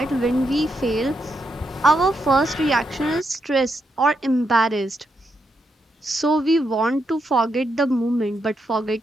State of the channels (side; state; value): both; normal; correlation 0.81